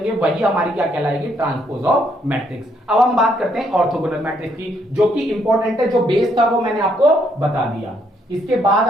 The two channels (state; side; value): normal; both; correlation 0.71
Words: वही हमारी क्या कहलाएगी, ट्रांसपोज ऑफ मैट्रिक्स। अब हम बात करते हैं ऑर्थोगोनल मैट्रिक्स की, जो कि इंपॉर्टेंट है, जो बेस था वो मैंने आपको बता दिया। इसके बाद